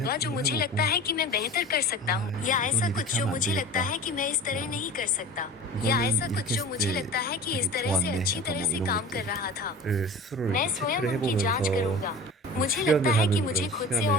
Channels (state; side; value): normal; both; correlation 0.37